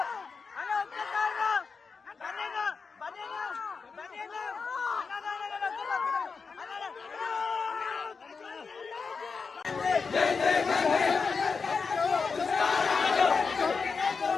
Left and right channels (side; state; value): right; quieter; 5.0 dB